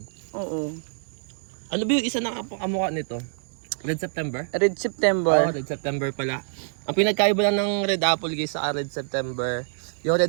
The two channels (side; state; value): left; silent; 61 dB below the other